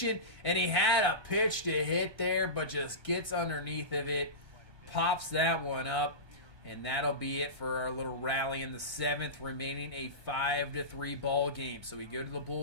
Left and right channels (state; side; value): late; left; 1.2 ms